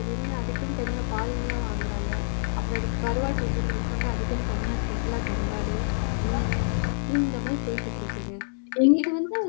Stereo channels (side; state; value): right; silent; digital silence